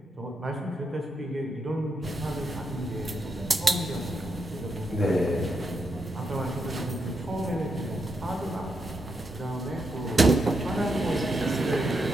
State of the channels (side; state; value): both; normal; correlation 0.82